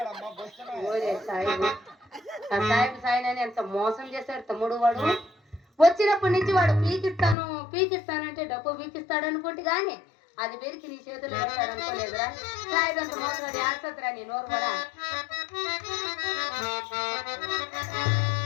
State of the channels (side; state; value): right; drops out; at 7.4 s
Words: ఓరే సాయిబు, ఆ సాయిబు సాయినని ఎంత మోసం చేశాడు తమ్ముడు. వాడు వచ్చినప్పటి నుంచి వాడు పీకిస్తానంటే డబ్బు పీకిస్తాడు అనుకుంటే గాని అది పెరికి నీ చేతులు పెడతాడు అనుకోలేదురా. సాయిబు అంత మోసం అది ఆడుతుందిరా నీ నోరు కూడా.